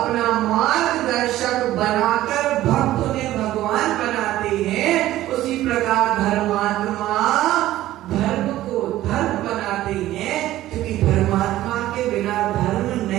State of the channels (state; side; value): quieter; left; 14.7 dB